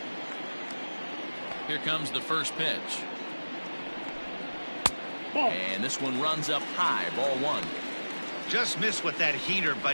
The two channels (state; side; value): inverted; both; correlation -1.00